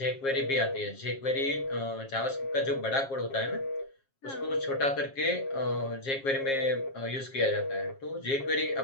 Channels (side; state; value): right; late; 7.4 ms